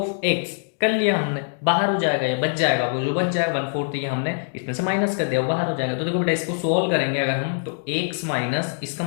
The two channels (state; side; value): silent; right; digital silence